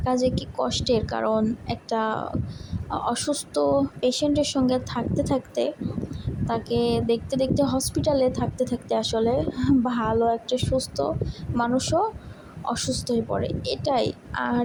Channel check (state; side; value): identical; both; correlation 1.00